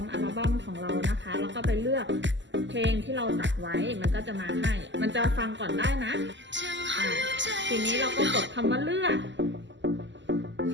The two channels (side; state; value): left; late; 0.54 ms